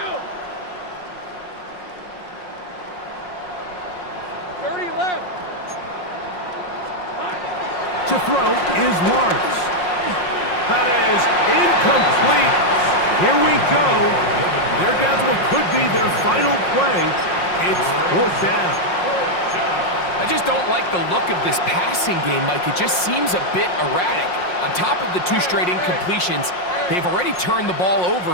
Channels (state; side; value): late; right; 5.5 ms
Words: 30 left. To throw is Lawrence. That is incomplete. Here we go. They're down to what could be their final play. It's 4th down. I just don't like the look of this passing game, Mike. It just seems a bit erratic. On top of the 2 straight incompletions, they've already turned the ball over